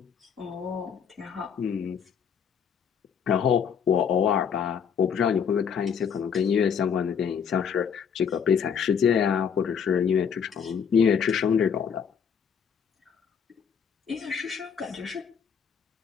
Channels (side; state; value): right; quieter; 7.2 dB